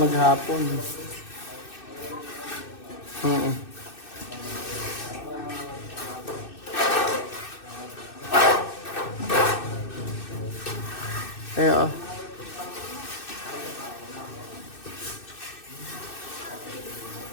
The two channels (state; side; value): late; right; 2.6 ms